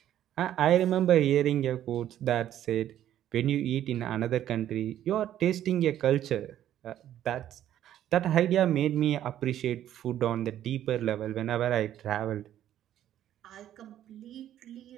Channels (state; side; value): quieter; left; 11.6 dB